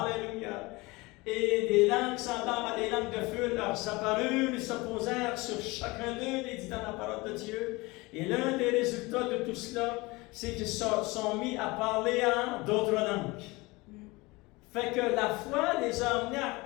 et des langues semblables à des langues de feu leur apparurent, ils se posèrent sur chacun d'eux, il dit dans la parole de Dieu, et l'un des résultats de tout cela, c'est qu'ils sont mis à parler en d'autres langues. Fait que la foi les a amenés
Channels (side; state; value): right; quieter; 23.3 dB